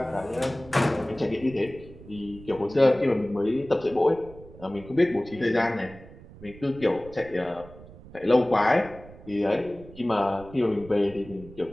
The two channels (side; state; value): right; noise; rumble, 19 dB below the sound